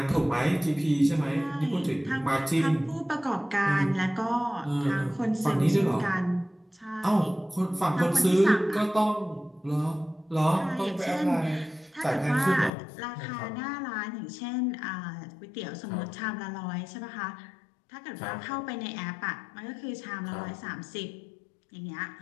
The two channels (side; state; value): right; drops out; at 12.7 s